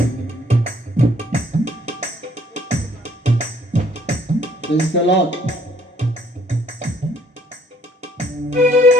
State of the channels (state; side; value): normal; both; correlation 0.62